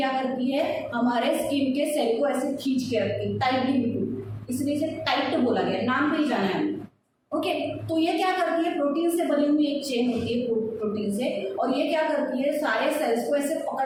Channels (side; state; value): both; identical; correlation 1.00